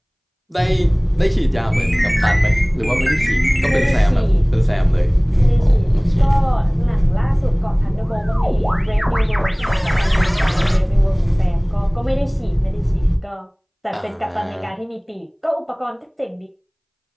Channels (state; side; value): identical; both; correlation 1.00